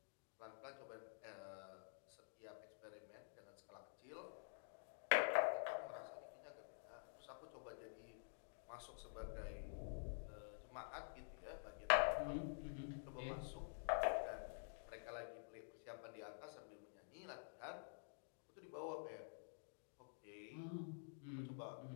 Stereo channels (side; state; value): right; silent; digital silence